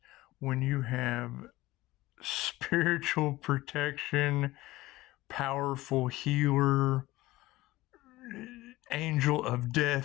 When you have spiritual protection, powerful healer, angel of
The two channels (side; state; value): right; quieter; 18.3 dB